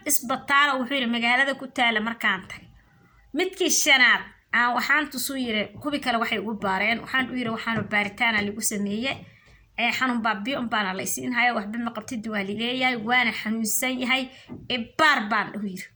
isbitaal wuxuu yiri magaalada ku taala markaan tagay midkii shanaad aan waxaan tusuu yiri kubi kale waxay ugu baareen waxaan u yiri waxaan baaritaan lagu sameeyay xanuun baabiyo baan la isiin hayo waxba ma qabtid waa lileeyahay waana xanuunsan yahay baar baan u yiri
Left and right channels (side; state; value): both; identical; correlation 1.00